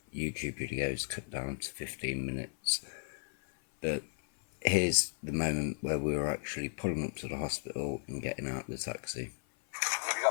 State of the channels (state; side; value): silent; right; 54 dB below the other